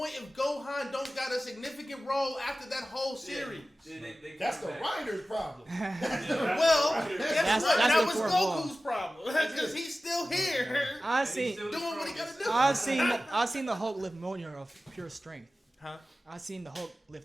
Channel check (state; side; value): normal; both; correlation 0.96